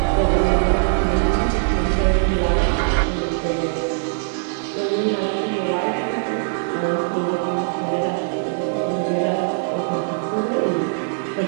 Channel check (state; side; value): silent; left; digital silence